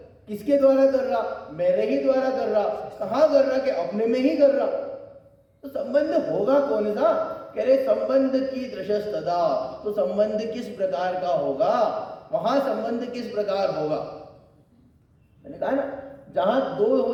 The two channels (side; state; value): both; identical; correlation 1.00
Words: किसके द्वारा कर रहा? मेरे ही द्वारा कर रहा। कहां कर रहा? कि अपने में ही कर रहा। तो संबंध होगा कौन सा? कह रहे संबंध की दृशस्तता, तो संबंध किस प्रकार का होगा? वहां संबंध किस प्रकार होगा? मैंने कहा ना, जहां दो